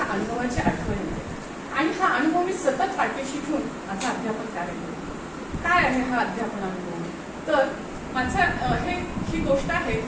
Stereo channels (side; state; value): both; identical; correlation 1.00